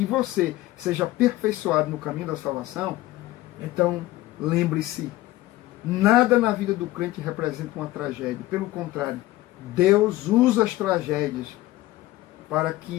você seja aperfeiçoado no caminho da salvação, Então, lembre-se, nada na vida do crente representa uma tragédia. Pelo contrário, Deus usa as tragédias para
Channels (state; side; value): quieter; right; 17.0 dB